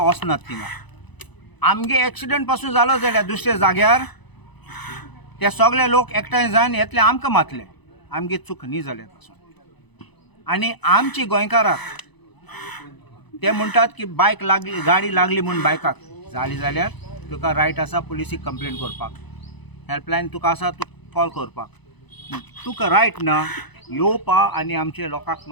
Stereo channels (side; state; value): right; late; 0.99 ms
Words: वचनात थिंगा. आमगे एक्सिडेंट पासून जालो जाल्यार दुसऱ्या जाग्यार ते सगळे लोक एकठांय जावन येतले आमकां मातले आमगे चूक न्ही जाल्या पासून. आनी आमची गोंयकाराक ते म्हणटात की बायक लागली गाडी लागली म्हूण बायकाक जाली जाल्यार तुका रायट आसा पुलिसीक कंप्लेन करपाक. हेल्पलायन तुका आसा तूं कॉल करपाक. तुका रायट ना येवपा आनी आमचे लोकांक